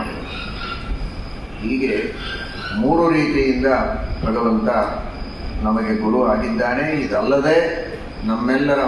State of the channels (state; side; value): identical; both; correlation 1.00